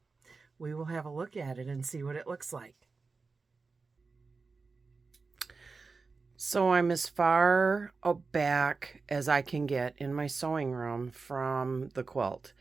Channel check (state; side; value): quieter; left; 4.3 dB